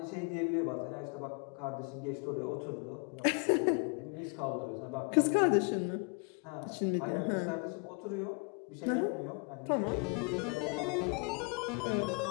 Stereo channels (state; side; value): quieter; right; 34.5 dB